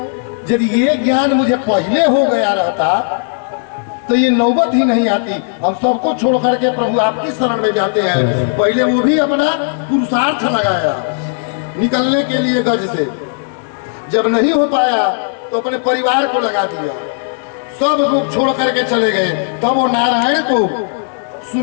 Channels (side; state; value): right; silent; 70 dB below the other